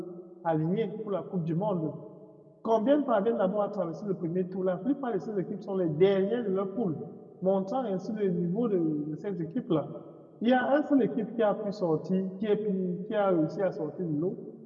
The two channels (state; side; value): identical; both; correlation 1.00